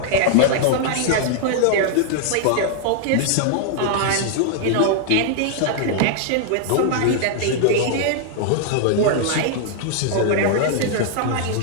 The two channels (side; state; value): both; different; correlation -0.01